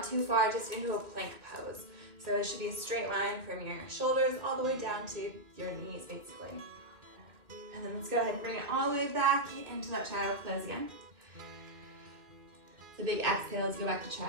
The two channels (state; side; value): late; left; 2.4 ms